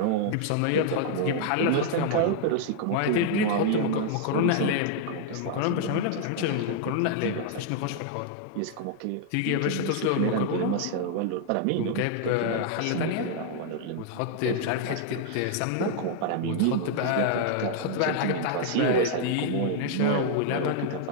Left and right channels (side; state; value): both; different; correlation -0.01